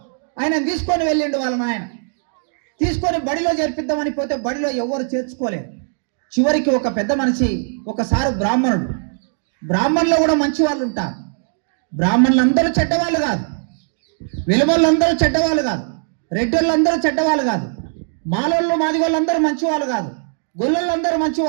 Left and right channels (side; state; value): left; silent; digital silence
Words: ఆయన తీసుకొని వెళ్ళిండు వాళ్ళ నాయన. తీసుకొని బడిలో చేర్పిద్దామని పోతే బడిలో ఎవరు చేర్చుకోలేదు. చివరికి ఒక పెద్ద మనిషి, ఒకసారి బ్రాహ్మణుడు, బ్రాహ్మణులు కూడా మంచి వాళ్ళు ఉంటారు. బ్రాహ్మణులందరూ చెడ్డవాళ్ళు కాదు, వెలుమోళ్ళందరూ చెడ్డవాళ్ళు కాదు, రెడ్డోళ్ళందరూ చెడ్డవాళ్ళు కాదు, మాలోళ్ళు మాదిగోళ్ళందరూ మంచి వాళ్ళు కాదు, గొల్లలందరూ మంచి